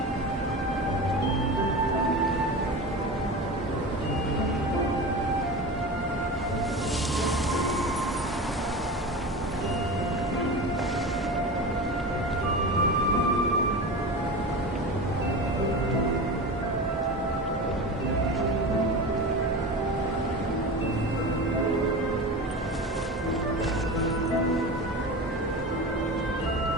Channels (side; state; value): both; normal; correlation 0.28